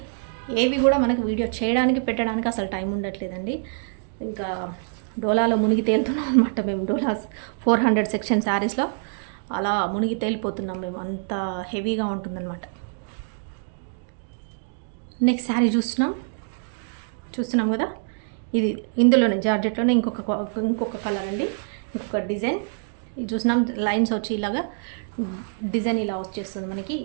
ఏవి కూడా మనకు వీడియో చేయడానికి పెట్టడానికి అసలు టైం ఉండట్లేదండి. ఇంకా డోలాలో మునిగి తేలుతున్నాం అనమాట మేము. డోలా 400 సెక్షన్ శారీస్లో అలా మునిగి తేలిపోతున్నాం మేము. అంత హెవీగా ఉంటుందన్నమాట. నెక్స్ట్ శారీ చూస్తున్నాం. చూస్తున్నాం కదా, ఇది ఇందులోనే జార్జెట్లోనే ఇంకొక కలర్ అండి, ఇంకొక డిజైన్. ఇది చూసినాం లైన్స్ వచ్చి ఇలాగా డిజైన్ ఇలా వచ్చేస్తుంది మనకి,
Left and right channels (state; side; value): silent; left; 62 dB below the other